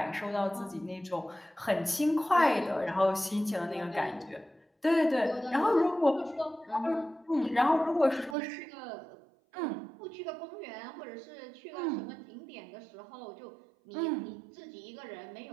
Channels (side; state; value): left; drops out; at 8.3 s